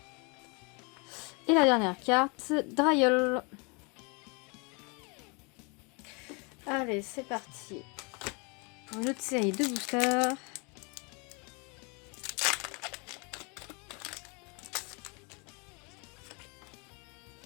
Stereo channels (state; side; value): quieter; right; 31.6 dB